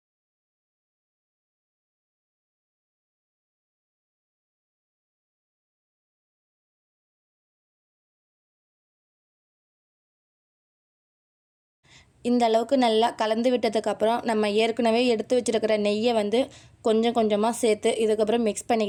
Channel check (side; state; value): both; identical; correlation 1.00